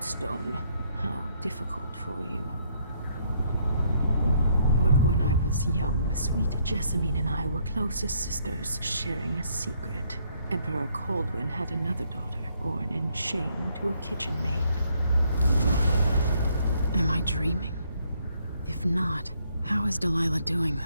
stone. How difficult for you. But when I was young, sweet Jessamine and I were close as sisters, sharing a secret. Emperor Kaldwin had another daughter, born in shame to a kitchen maid. Am I dreaming? If not, how is Delilah doing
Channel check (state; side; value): inverted; both; correlation -0.70